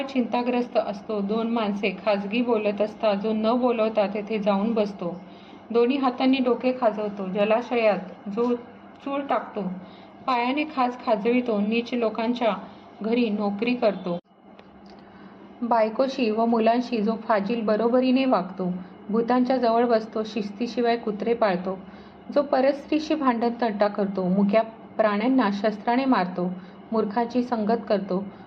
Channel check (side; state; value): both; identical; correlation 1.00